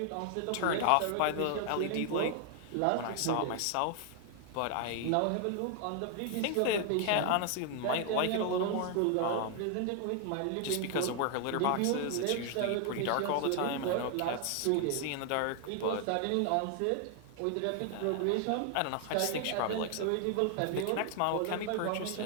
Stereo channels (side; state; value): both; different; correlation 0.00